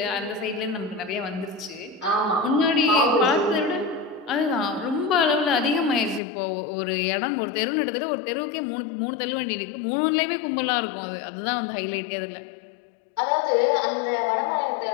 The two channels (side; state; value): right; drops out; at 6.2 s